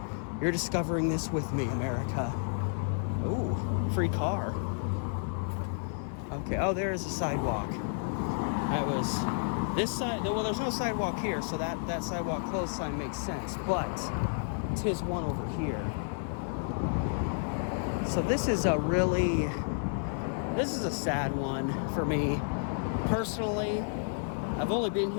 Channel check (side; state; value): right; silent; digital silence